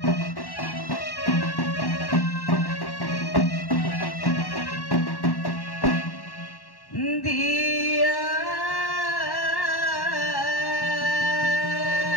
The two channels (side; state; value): right; late; 1.1 ms